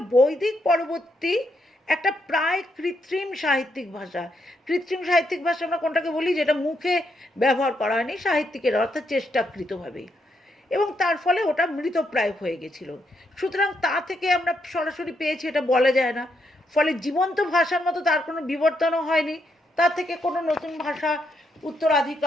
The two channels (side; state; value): both; normal; correlation 0.78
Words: বৈদিক পরবর্তী একটা প্রায় কৃত্রিম সাহিত্যিক ভাষা। কৃত্রিম সাহিত্যিক ভাষা আমরা কোনটাকে বলি? যেটা মুখে ব্যবহার করা হয়নি সাহিত্যিকের, অর্থাৎ চেষ্টাকৃতভাবে, এবং তার ফলে ওটা মৃতপ্রায় হয়ে গেছিল। সুতরাং তা থেকে আমরা সরাসরি পেয়েছি এটা বলা যায় না। ফলে জীবন্ত ভাষার মতো তার কোনো বিবর্তনও হয়নি, তার থেকে কোনো নতুন ভাষা